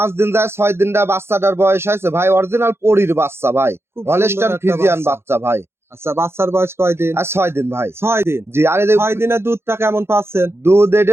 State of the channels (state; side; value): late; left; 0.12 ms